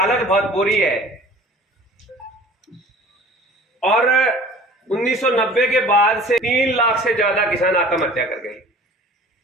बहुत बुरी है और 1990 के बाद से 3 लाख से ज्यादा किसान आत्महत्या कर गए।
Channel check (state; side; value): normal; both; correlation 0.46